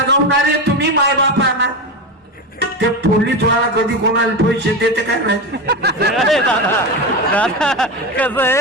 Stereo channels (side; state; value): both; normal; correlation 0.19